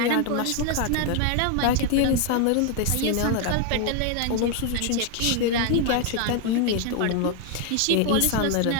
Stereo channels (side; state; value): both; different; correlation 0.01